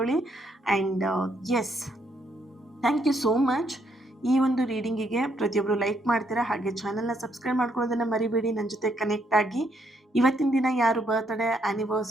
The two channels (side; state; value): both; normal; correlation 0.73